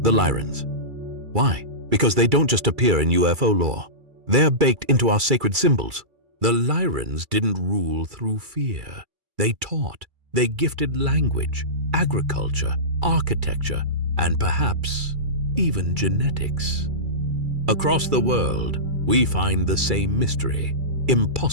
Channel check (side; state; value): left; late; 2.3 ms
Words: the Lyrans. Why? Because they don't just appear in UFO lore. They're baked into our sacred symbols. The Lyrans didn't rule through fear. They taught. They gifted language, agriculture, architecture, and perhaps even genetics. Across the world, we find the same mystery,